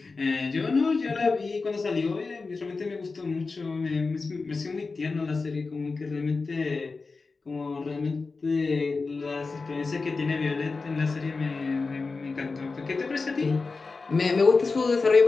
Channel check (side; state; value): right; quieter; 4.1 dB